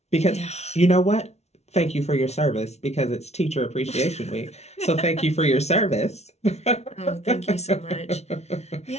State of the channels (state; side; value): late; right; 0.31 ms